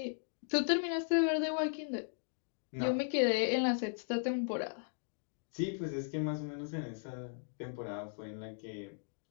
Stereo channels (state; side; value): silent; right; digital silence